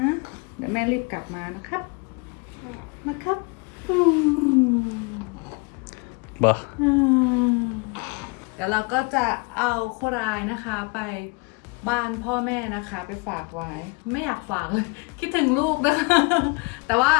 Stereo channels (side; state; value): right; quieter; 30.3 dB